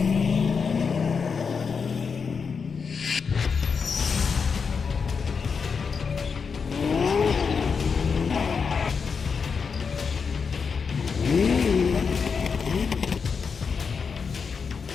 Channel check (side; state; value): right; quieter; 5.7 dB